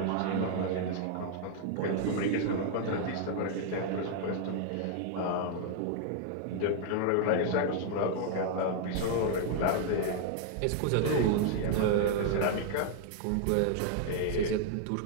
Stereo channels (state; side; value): different; both; correlation 0.00